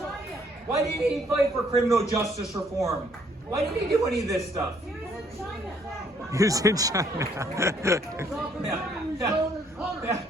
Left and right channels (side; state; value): both; normal; correlation 0.66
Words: Why didn't he fight for criminal justice reform? Why didn't he do any of this stuff? He was in China. Yeah.